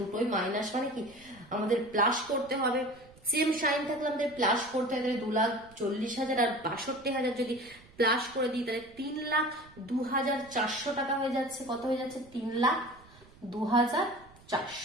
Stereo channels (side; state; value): right; noise; rumble, 25 dB below the sound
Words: দুটোই মাইনাস, মানে কি আমাদের প্লাস করতে হবে। সেম সাইন থাকলে আমাদের প্লাস করতে হবে, তাহলে 2,40,000 আর 62,000 যদি প্লাস করে দিই তাহলে 3,02,400 টাকা হয়ে যাচ্ছে। কত হয়ে যাচ্ছে,